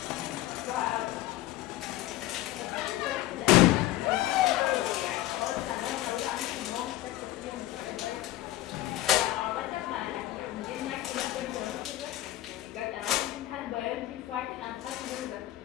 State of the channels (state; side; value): quieter; right; 15.6 dB